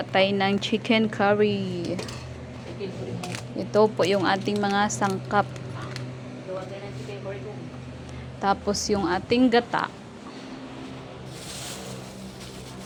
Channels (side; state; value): both; identical; correlation 1.00